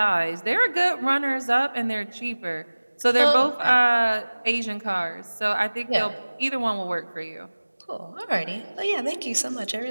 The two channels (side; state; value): both; inverted; correlation -1.00